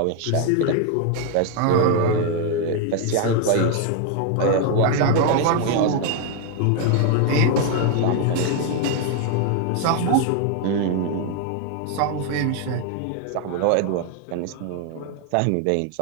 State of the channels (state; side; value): different; both; correlation 0.00